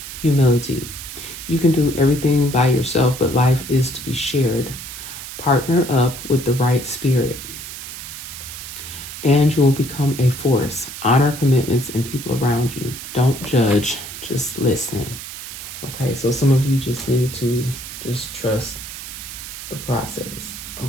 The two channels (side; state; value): right; noise; hiss, 10 dB below the sound